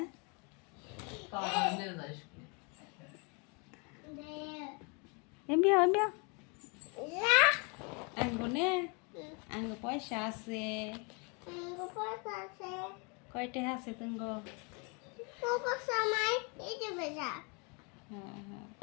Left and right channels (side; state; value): right; quieter; 33.1 dB